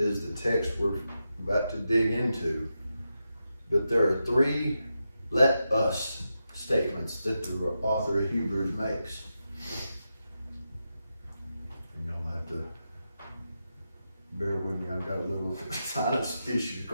the text we're about to dig into. But there are 3 let us statements that the author of Hebrews makes. And you'll have to sinus issues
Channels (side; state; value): both; inverted; correlation -0.88